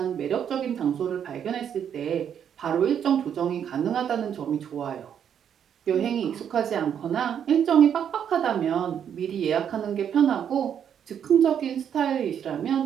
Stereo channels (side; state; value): left; quieter; 8.6 dB